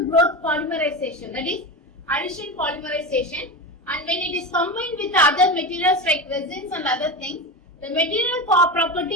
polymerization, that is addition polymerization, and when it is combined with other materials like resins and other things, the material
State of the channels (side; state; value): both; normal; correlation 0.23